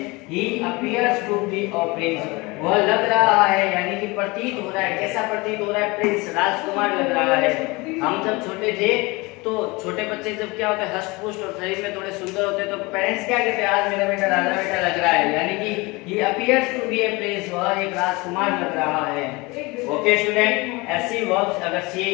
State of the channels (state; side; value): quieter; right; 24.4 dB